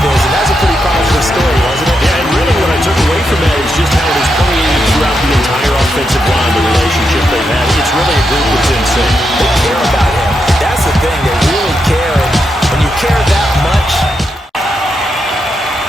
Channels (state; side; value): normal; both; correlation 0.83